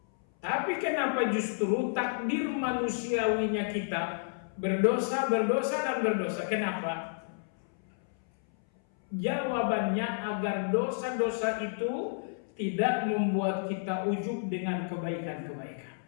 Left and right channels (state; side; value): silent; right; 57 dB below the other